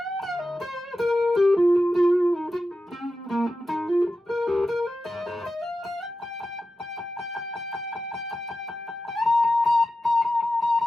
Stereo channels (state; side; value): normal; both; correlation 0.92